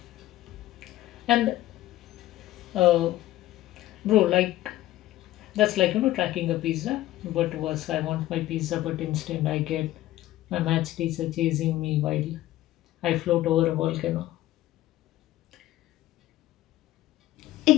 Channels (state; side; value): quieter; right; 15.2 dB